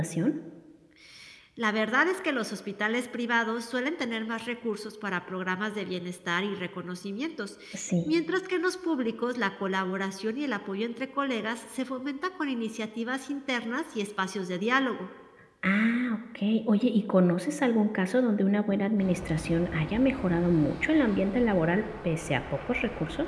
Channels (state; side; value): identical; both; correlation 1.00